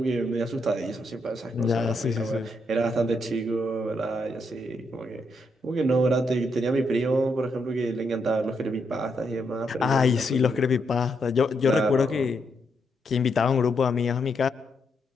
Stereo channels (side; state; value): both; normal; correlation 0.79